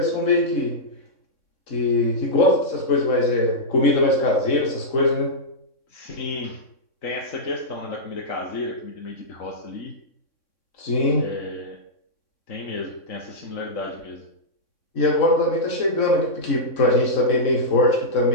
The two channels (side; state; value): right; late; 3.6 ms